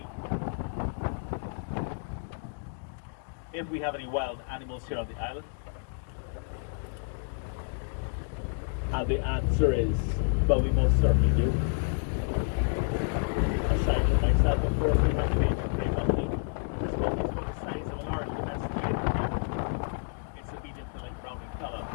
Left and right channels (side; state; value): right; silent; 57 dB below the other